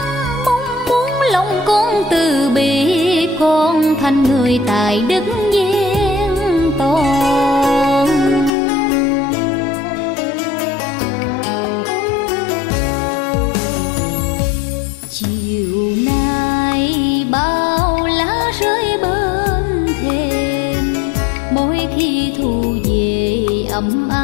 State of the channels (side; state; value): right; drops out; at 8.5 s